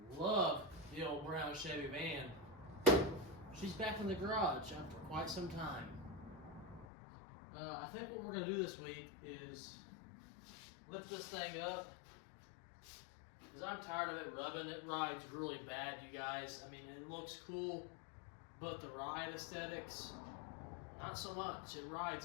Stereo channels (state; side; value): drops out; right; at 6.9 s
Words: love the old brown Chevy van, she's back in the garage after quite some time. I think what we're going to do this week is lift this thing up, because I'm tired of it rubbing. It rides really bad, you guys. I mean, it looks cool, but the ride aesthetics, not so much. It